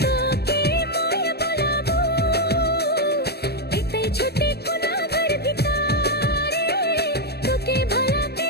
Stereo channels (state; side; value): late; right; 0.47 ms